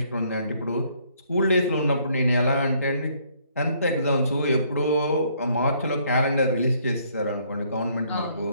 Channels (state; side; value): inverted; both; correlation -0.66